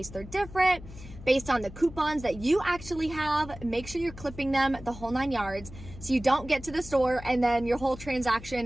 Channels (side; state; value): left; noise; hum, 16 dB below the sound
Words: they're different, based on the coupons that you actually have. Make sure you're clipping them the whole 9 yards so you don't get to the store and then your whole